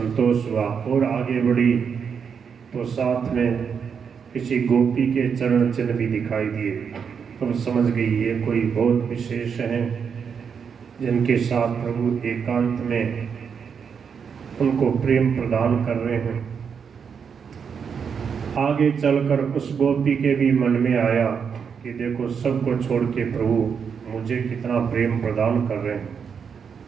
हुआ और आगे बढ़ी तो साथ में किसी गोपी के चरण चिन्ह भी दिखाई दिए। तो समझ गई ये कोई बहुत विशेष हैं जिनके साथ प्रभु एकांत में उनको प्रेम प्रदान कर रहे हैं। आगे चलकर उस गोपी के भी मन में आया कि देखो सबको छोड़ के प्रभु मुझे कितना प्रेम प्रदान कर रहे हैं,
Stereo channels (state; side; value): quieter; left; 6.6 dB